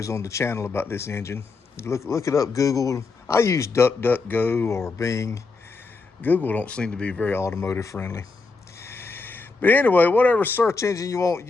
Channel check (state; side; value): quieter; right; 4.1 dB